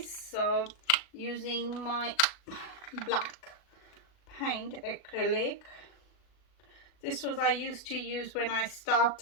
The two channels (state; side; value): late; right; 37 ms